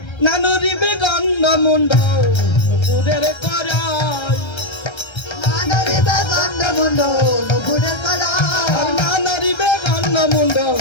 না নড়িবে গন্ড মুন্ড নুপুরের করাই, না নড়িবে গন্ড মুন্ড নুপুরের করাই, না নড়িবে গন্ড মুন্ড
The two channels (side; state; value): right; late; 1.3 ms